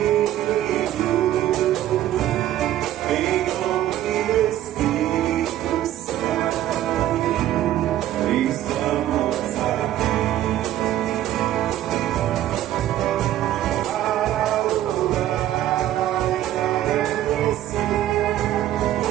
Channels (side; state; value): left; quieter; 13.0 dB